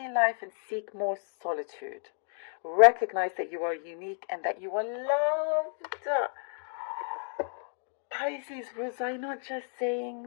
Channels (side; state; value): right; silent; 57 dB below the other